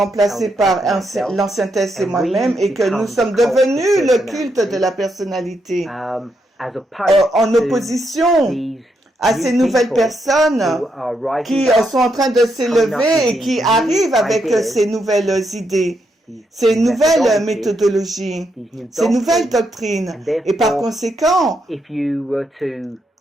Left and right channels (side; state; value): both; normal; correlation 0.80